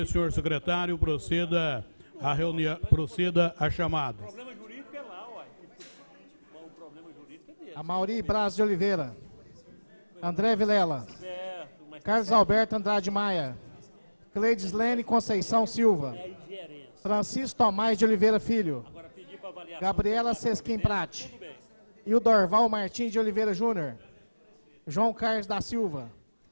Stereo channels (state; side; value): inverted; both; correlation -1.00